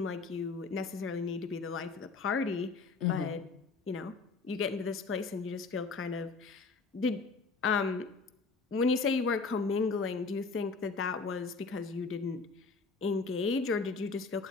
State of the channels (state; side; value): quieter; right; 4.3 dB